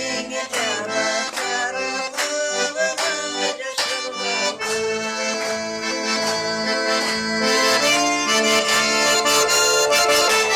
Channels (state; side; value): identical; both; correlation 1.00